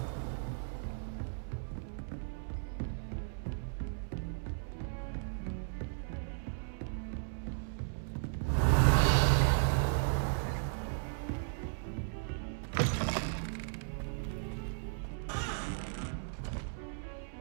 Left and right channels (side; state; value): left; silent; 54 dB below the other